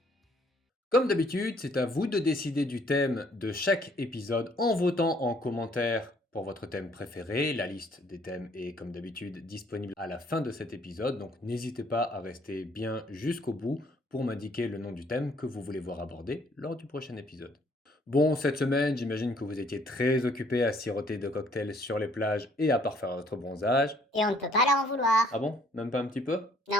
Comme d'habitude, c'est à vous de décider du thème de chaque épisode en votant en commentaire pour votre thème préféré. La liste des thèmes est comme d'habitude disponible à la fin de cet épisode, donc n'hésitez pas à rester bien jusqu'au bout pour m'indiquer le nom du thème que vous voulez voir abordé lors du prochain épisode. Bon, cette semaine, j'imagine que vous étiez très occupé à siroter de cocktails sur les plages et à parfaire votre bronzage. Et on ne peut pas leur en vouloir. Ah bon? Même pas un petit peu?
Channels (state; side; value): normal; both; correlation 0.63